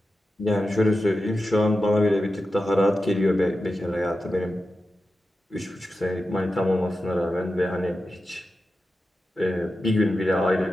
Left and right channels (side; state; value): both; normal; correlation 0.91